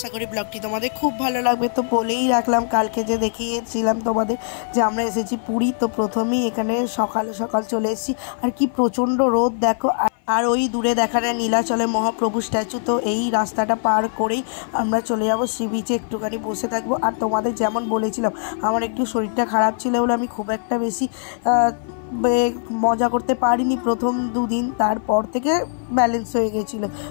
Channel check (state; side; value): silent; right; 57 dB below the other